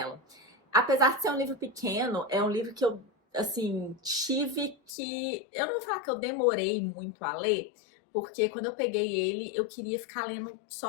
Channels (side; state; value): right; drops out; at 4.9 s